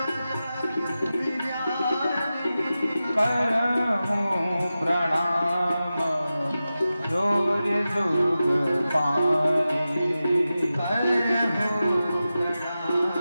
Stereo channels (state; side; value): inverted; both; correlation -0.93